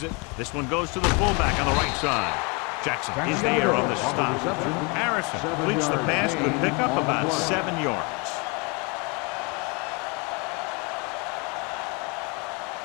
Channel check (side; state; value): right; quieter; 30.4 dB